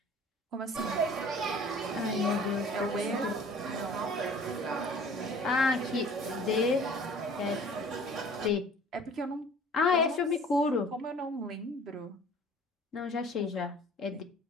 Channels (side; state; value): both; normal; correlation 0.49